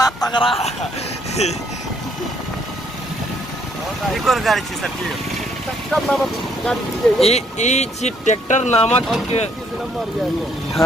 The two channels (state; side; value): normal; both; correlation 0.68